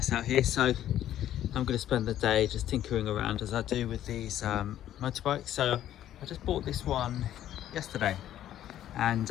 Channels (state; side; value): quieter; right; 11.9 dB